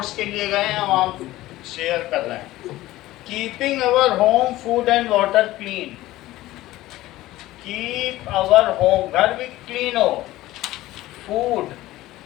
के लिए गए हैं हम शेयर कर रहे हैं। Keeping our home food and water clean. Keep our home, घर भी क्लीन हो, फूड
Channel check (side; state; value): right; quieter; 16.6 dB